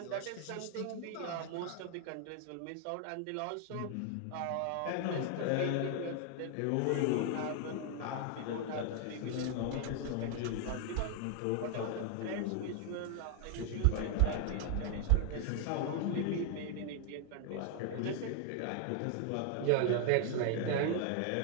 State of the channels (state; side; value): different; both; correlation 0.00